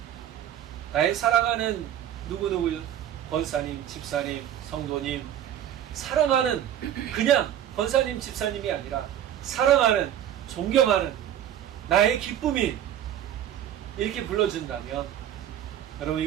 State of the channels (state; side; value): quieter; left; 10.8 dB